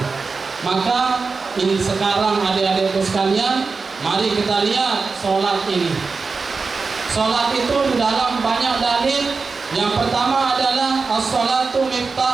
Maka ini sekarang adik-adikku sekalian, mari kita lihat sholat ini. Sholat itu di dalam banyak dalil. Yang pertama adalah as-sholatu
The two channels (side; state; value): left; quieter; 4.5 dB